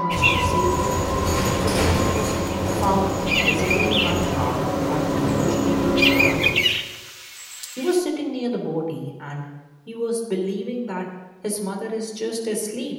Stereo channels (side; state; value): both; identical; correlation 1.00